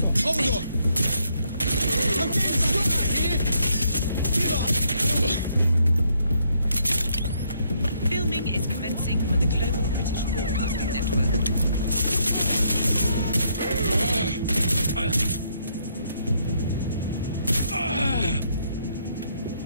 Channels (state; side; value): inverted; both; correlation -0.72